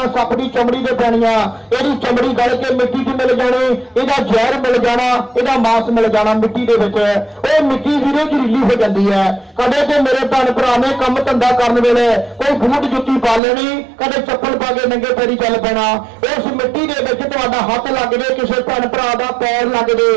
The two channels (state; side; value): drops out; left; at 13.4 s